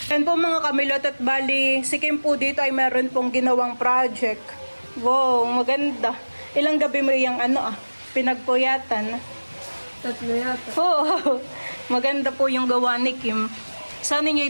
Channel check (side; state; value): both; inverted; correlation -1.00